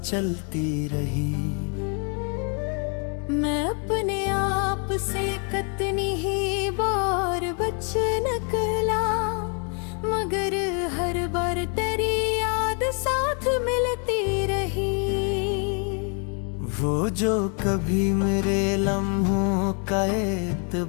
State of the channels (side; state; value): right; quieter; 39.2 dB